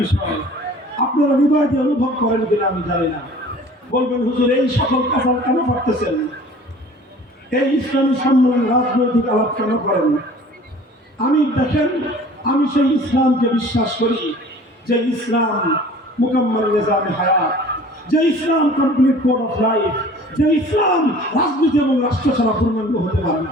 বিষয়। আপনারা হৃদয় দিয়ে অনুভব করেন কিনা আমি জানি না। বলবেন, হুজুর এই সকল কাজ কেন করতেছেন? এই ইসলামী সম্মেলন রাজনৈতিক আলাপ কেন করেন? আমি দেখেন, আমি সেই ইসলামকে বিশ্বাস করি যে ইসলাম মুকাম্মাল নিজামে হায়াত, যে ইসলাম কমপ্লিট কোড অফ লাইফ, যে ইসলাম রাজনীতি এবং রাষ্ট্র ছাড়া পূর্ণাঙ্গ হতে পারে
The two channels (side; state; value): both; normal; correlation 0.47